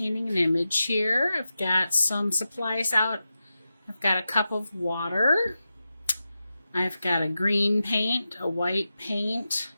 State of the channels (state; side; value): inverted; both; correlation -0.92